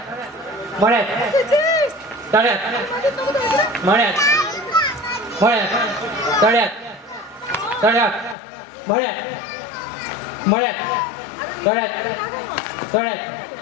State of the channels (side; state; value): right; drops out; at 8.3 s